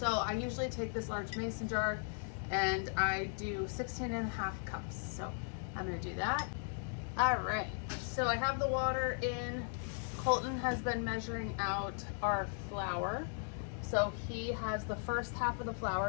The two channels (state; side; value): silent; right; 53 dB below the other